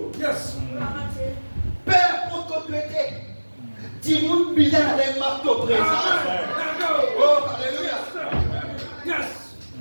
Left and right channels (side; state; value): both; inverted; correlation -1.00